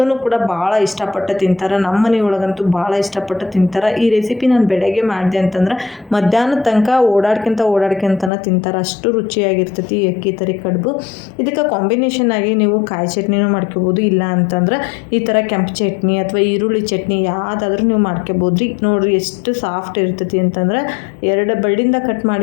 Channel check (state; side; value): drops out; right; at 8.3 s